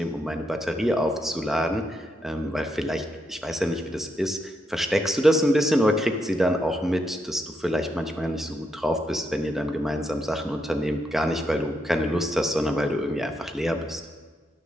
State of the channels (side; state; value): both; normal; correlation 0.80